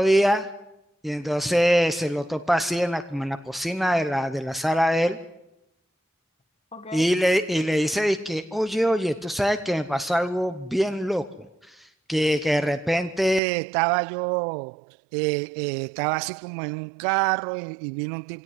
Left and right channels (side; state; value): left; drops out; at 13.4 s